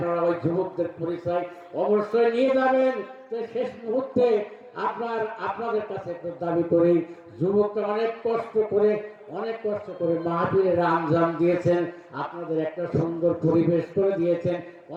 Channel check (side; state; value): both; identical; correlation 1.00